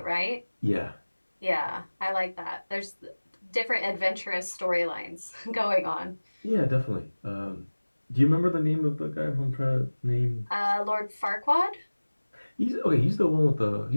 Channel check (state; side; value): inverted; both; correlation -1.00